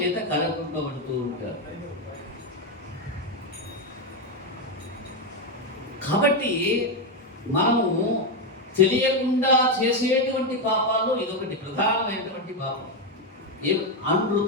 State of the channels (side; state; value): both; normal; correlation 0.07